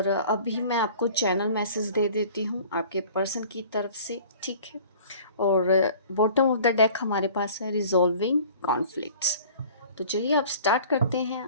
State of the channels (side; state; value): both; inverted; correlation -0.47